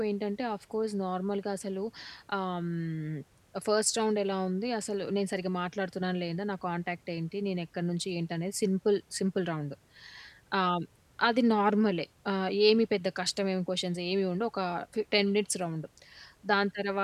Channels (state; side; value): identical; both; correlation 1.00